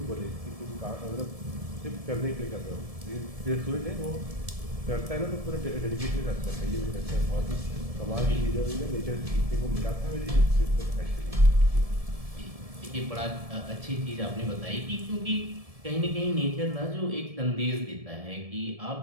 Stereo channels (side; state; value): left; late; 1.7 ms